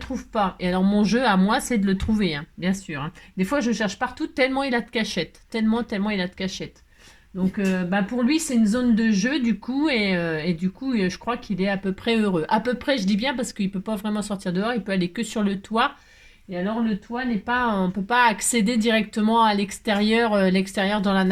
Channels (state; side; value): identical; both; correlation 1.00